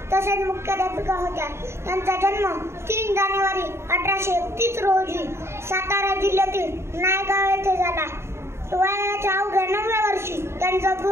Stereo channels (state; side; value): late; left; 0.13 ms